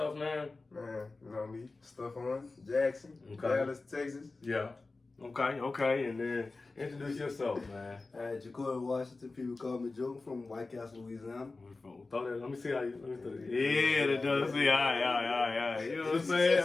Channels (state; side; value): quieter; right; 3.6 dB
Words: man. Man, you know me, Stephone, Jackson, Dallas, Texas. Yeah. Okay, and then introduce yourself, man. Jacorey, Washington. People call me Joe from White Castle, Louisiana. Let me see how you. Yeah, that does. See, all right. You know what I'm saying?